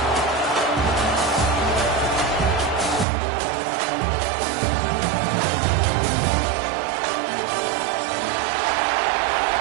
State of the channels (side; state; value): left; drops out; at 3.1 s